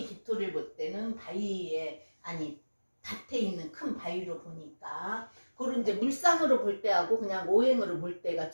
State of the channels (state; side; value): inverted; both; correlation -1.00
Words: 기토를 볼 때는 바위에, 아니 밭에 있는 큰 바위로 보니까, 그런 이제 물상으로 볼 때하고 그냥 오행으로 볼 때가